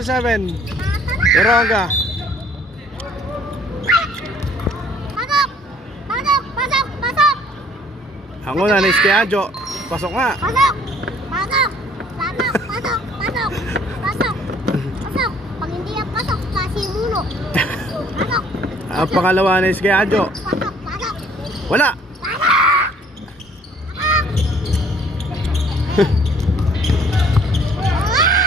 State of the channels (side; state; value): both; normal; correlation 0.58